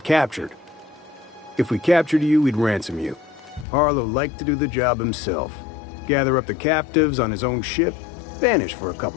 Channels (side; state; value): right; drops out; at 3.7 s